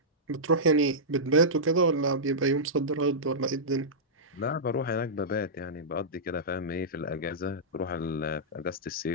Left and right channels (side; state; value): both; normal; correlation -0.13